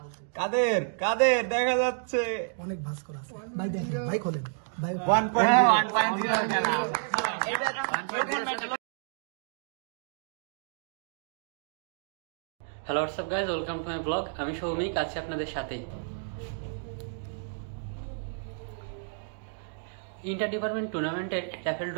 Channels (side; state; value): left; silent; digital silence